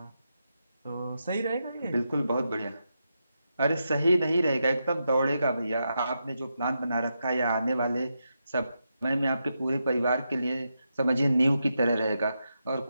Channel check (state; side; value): inverted; both; correlation -0.86